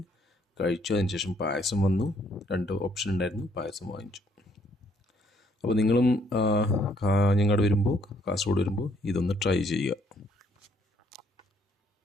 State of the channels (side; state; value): both; normal; correlation 0.67